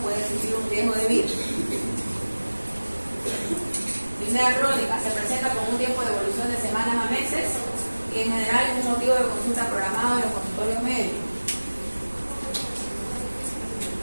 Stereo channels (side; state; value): both; inverted; correlation -1.00